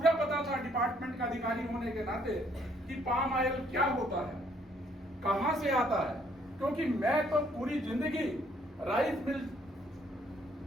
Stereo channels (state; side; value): normal; both; correlation 0.66